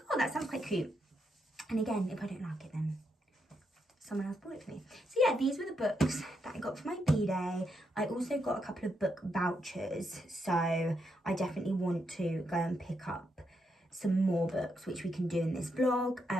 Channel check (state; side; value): normal; both; correlation 0.80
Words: oh, that sounds quite cute. And again, if I don't like it, then someone else bought it for me. So yeah, these were the books that I got for my B-Day. I also got a couple of book vouchers, so I definitely want to go and pick up some more books, which we can do in this vlog,